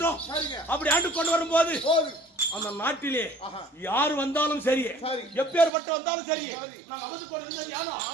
அப்படி ஆண்டு கொண்டு வரும்போது அந்த நாட்டிலே யாரு வந்தாலும் சரி, எப்பேற்பட்ட வந்தாலும் சரி, நான் அமர்ந்து கொண்டு இருந்தது யாரோ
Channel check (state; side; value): drops out; left; at 5.7 s